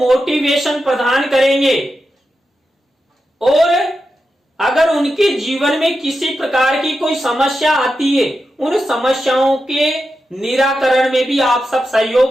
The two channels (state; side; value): normal; both; correlation 0.89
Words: प्रदान करेंगे और अगर उनके जीवन में किसी प्रकार की कोई समस्या आती है उन समस्याओं के निराकरण में भी आप सब